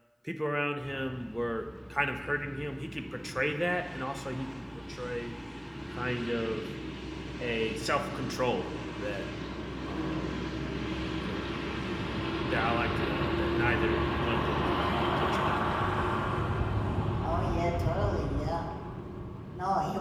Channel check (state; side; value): identical; both; correlation 1.00